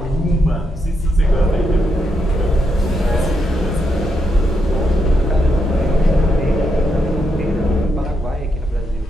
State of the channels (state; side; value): normal; both; correlation 0.81